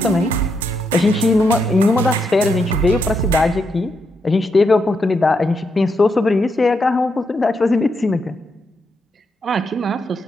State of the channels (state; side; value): normal; both; correlation 0.81